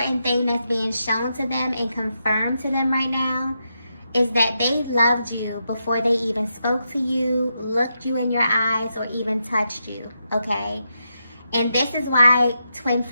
thing that's being shown to them and confirmed to them right now is that they loved you before they even spoke to you, looked you in your eyes, or even touched you, okay? And this is why twin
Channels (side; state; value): both; inverted; correlation -0.84